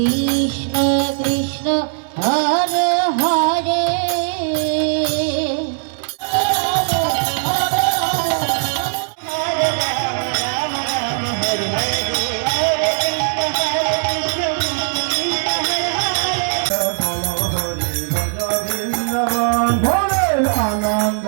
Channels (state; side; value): silent; left; digital silence